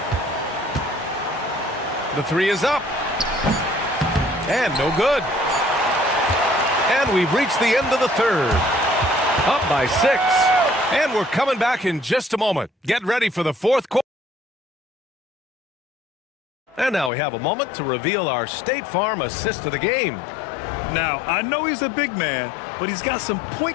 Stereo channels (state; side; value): drops out; right; at 17.1 s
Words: The three is up. And no good. And we've reached the end of the third. Up by 6. And we're coming back in just a moment. Get ready for the fourth quarter. And now we have a moment to reveal our State Farm assist of the game. Now, I know he's a big man, but he's got some